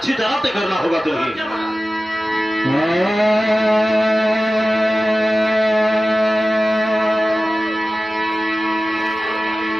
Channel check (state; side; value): normal; both; correlation 0.95